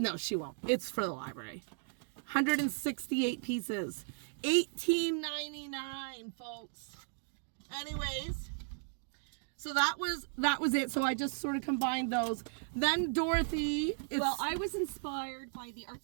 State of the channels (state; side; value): silent; left; digital silence